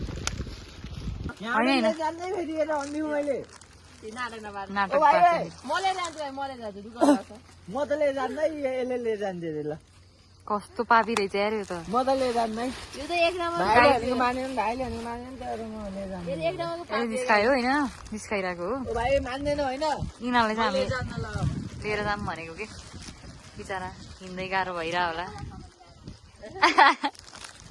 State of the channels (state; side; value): identical; both; correlation 1.00